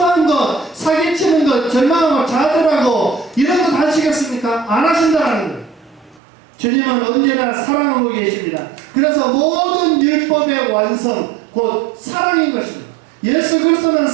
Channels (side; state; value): left; drops out; at 6.2 s